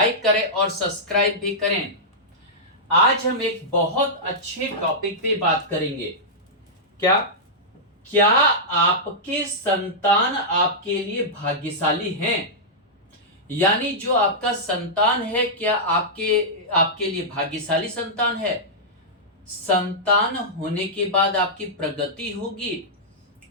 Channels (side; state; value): both; normal; correlation -0.11